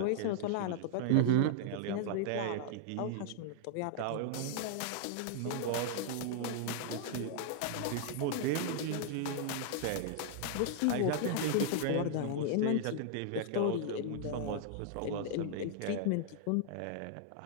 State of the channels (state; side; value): different; both; correlation -0.01